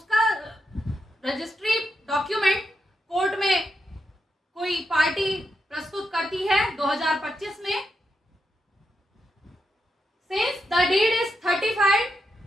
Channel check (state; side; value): normal; both; correlation 0.85